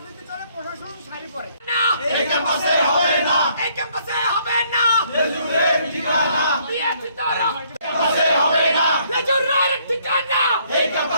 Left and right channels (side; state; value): both; inverted; correlation -0.66